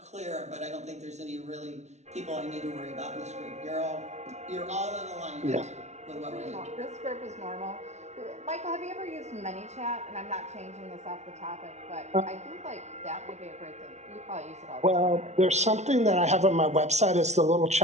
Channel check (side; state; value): left; late; 0.32 ms